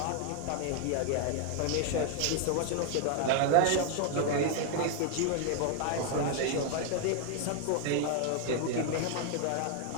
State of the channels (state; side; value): different; both; correlation 0.00